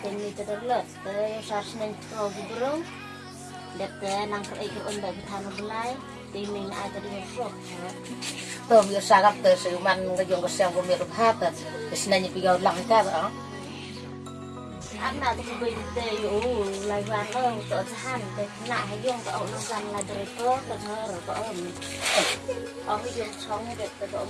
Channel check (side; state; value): both; identical; correlation 1.00